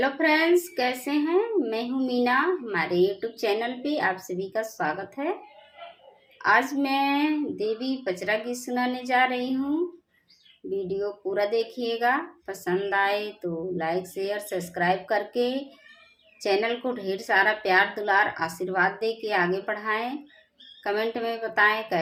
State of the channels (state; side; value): identical; both; correlation 1.00